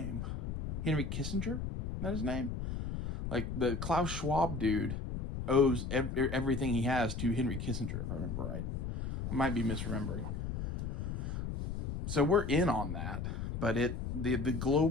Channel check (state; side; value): noise; left; rumble, 4 dB below the sound